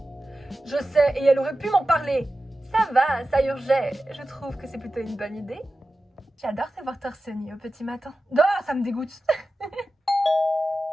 Je sais, et elle aurait pu m'en parler. Ça va, ça urgeait. Je trouve que c'est plutôt une bonne idée. J'adore te voir torse nu au petit matin. Oh, ça me dégoûte.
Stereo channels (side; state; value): both; normal; correlation 0.94